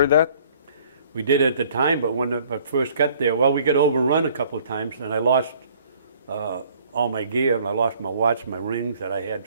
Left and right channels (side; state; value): both; inverted; correlation -0.58